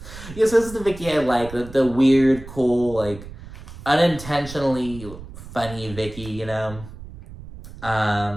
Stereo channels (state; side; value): noise; right; rumble, 15 dB below the sound